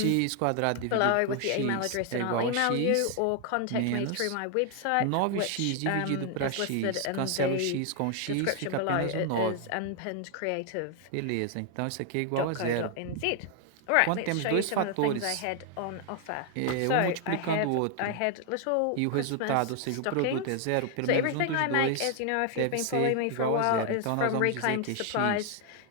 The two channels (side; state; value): both; different; correlation 0.00